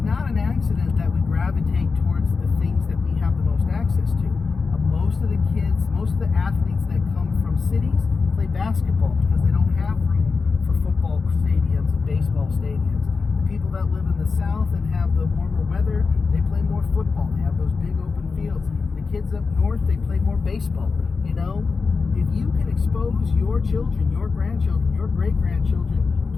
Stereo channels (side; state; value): right; quieter; 4.6 dB